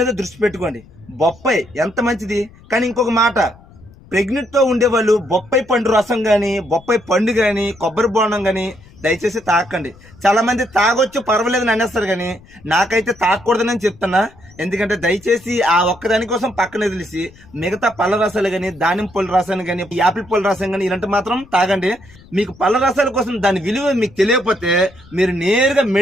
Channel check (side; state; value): left; noise; rumble, 24 dB below the sound